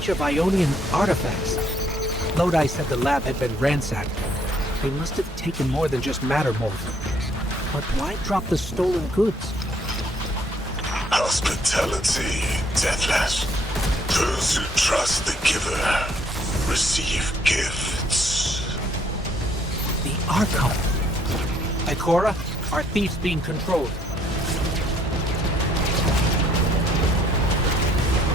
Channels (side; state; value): both; normal; correlation 0.65